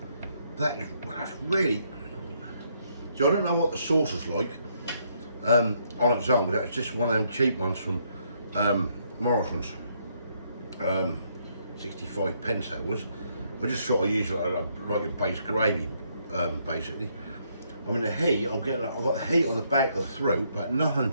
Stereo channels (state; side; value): inverted; both; correlation -0.72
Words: That's really. So I don't know what the sauce is like on its own. That's just one of them cheap ones from Morrisons. 65 pence that was. I just sort of use it like a base gravy, basically. I mean the heat, I've got the heat on the back of the throat, but